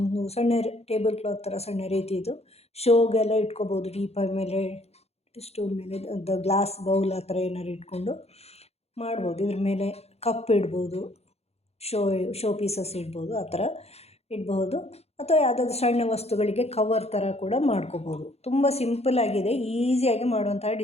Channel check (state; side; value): late; right; 0.30 ms